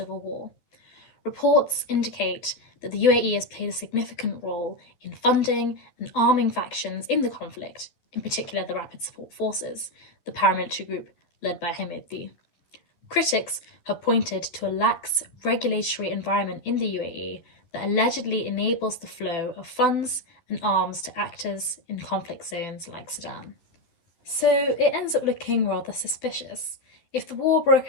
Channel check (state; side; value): late; right; 12 ms